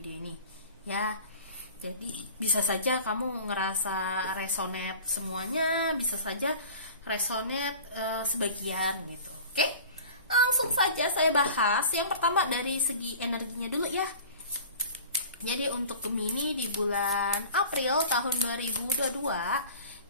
ini ya. Jadi bisa saja kamu ngerasa resonate semuanya, bisa saja resonate sebagian gitu. Oke, langsung saja saya bahas. Yang pertama dari segi energinya dulu ya. Jadi untuk Gemini di bulan April tahun 2022,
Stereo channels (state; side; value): inverted; both; correlation -0.41